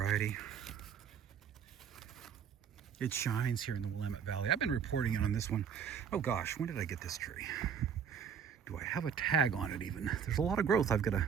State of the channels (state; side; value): quieter; left; 7.5 dB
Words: It shines here in the Willamette Valley. I've been reporting on this one. Oh gosh, when did I get this tree? Do I have a tag on it even? There's a lot of growth I've got to